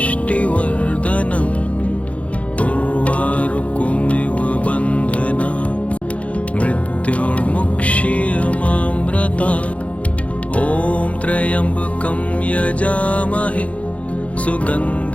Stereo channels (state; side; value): late; right; 0.065 ms